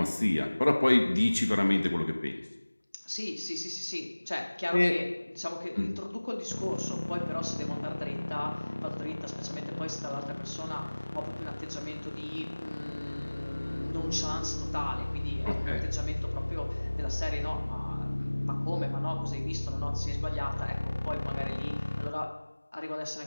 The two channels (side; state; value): both; inverted; correlation -1.00